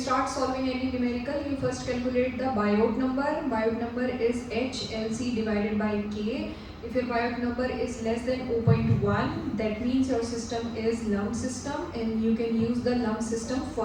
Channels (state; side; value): identical; both; correlation 1.00